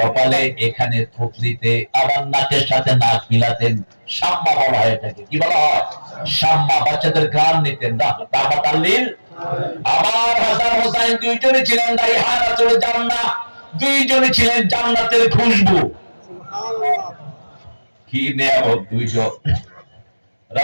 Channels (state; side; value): inverted; both; correlation -1.00